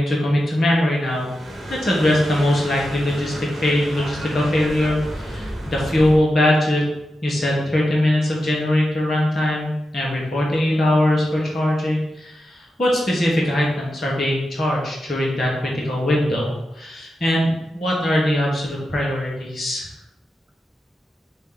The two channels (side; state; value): both; normal; correlation 0.89